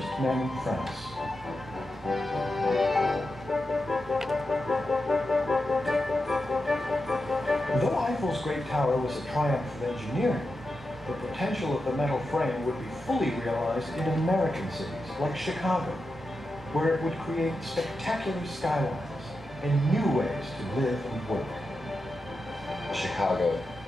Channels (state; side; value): normal; both; correlation 0.89